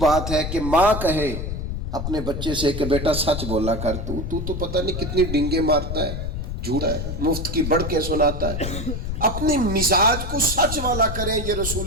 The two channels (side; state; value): left; noise; rumble, 4 dB below the sound